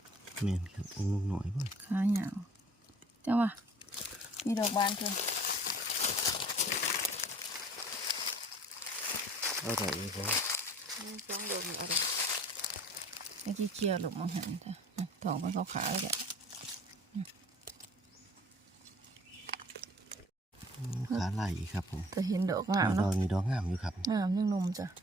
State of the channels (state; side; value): normal; both; correlation 0.49